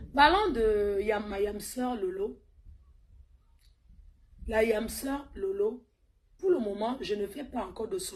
Parlons de ma yamseur Lolo. La yamseur Lolo, pour le moment, je ne fais pas encore de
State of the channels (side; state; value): both; identical; correlation 1.00